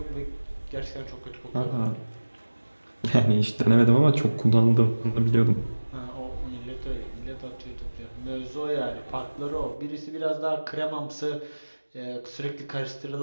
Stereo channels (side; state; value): both; inverted; correlation -1.00